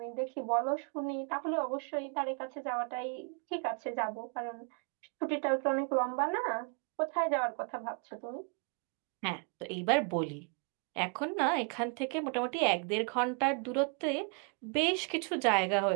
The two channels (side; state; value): left; quieter; 38.9 dB